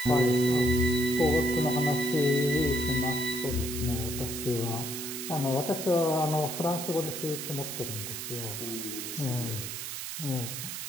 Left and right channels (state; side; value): noise; right; hiss, 6 dB below the sound